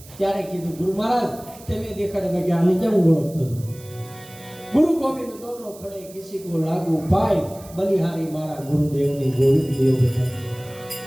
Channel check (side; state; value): right; noise; hiss, 20 dB below the sound